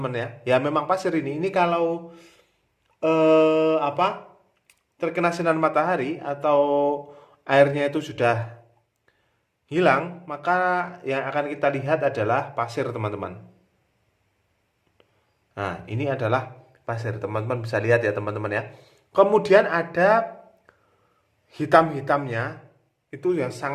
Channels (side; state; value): both; identical; correlation 1.00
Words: ya. Ya memang pasir ini. Ini kalau terkena sinar matahari atau airnya itu sudah hilang, maka yang akan kita lihat adalah pasir teman-teman. Nah, ini adalah pasir, teman-teman bisa lihat ya teman-teman ya. Kemudian ada hitam-hitamnya, itu yang